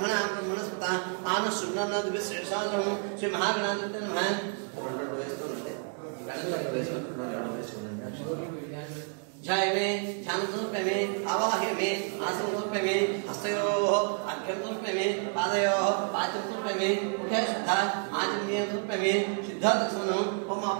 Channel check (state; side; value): quieter; left; 39.9 dB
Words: आनशुन्नद्विश्रेषालं श्री महागणाधिपते नमः రెండు వేస్తుండండి గణచంద్ర వేసుకుంటే जय मे ध्यान समर्पय मे आवाह्य मे आसन समर्पय मे हस्तयोः अर्घ्यं समर्पय मे पादयोः पाद्यं समर्पय मे मुखे शुद्ध आचमनीयं समर्पय मे शुद्ध दर्शनम् ओम